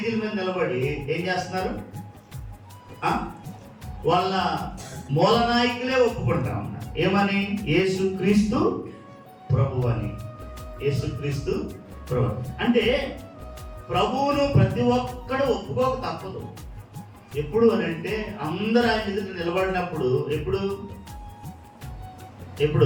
మీద నిలబడి ఏం చేస్తున్నారు? వాళ్ళ మూల నాయకులే ఒప్పుకుంటా ఉన్నారు. ఏమని? యేసుక్రీస్తు ప్రభు అని. యేసుక్రీస్తు ప్రభు అంటే ప్రభువును ప్రతి ఒక్కడు ఒప్పుకోక తప్పదు. ఎప్పుడు అని అంటే అందరూ ఆయన ఎదుట నిలబడినప్పుడు.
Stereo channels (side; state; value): both; identical; correlation 1.00